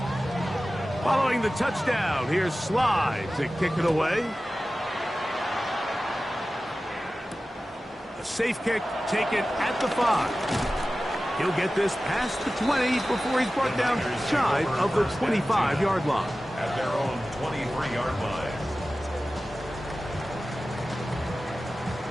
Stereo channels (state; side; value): normal; both; correlation 0.95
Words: Following the touchdown, here's Sly to kick it away. A safe kick taken at the 5. He'll get this past the 20 before he's brought down shy of the 25-yard line. At their own 23-yard line.